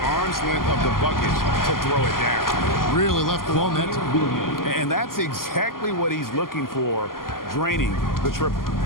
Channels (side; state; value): right; late; 0.91 ms